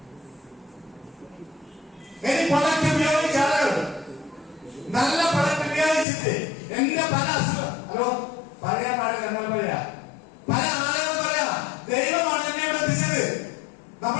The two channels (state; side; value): drops out; right; at 6.1 s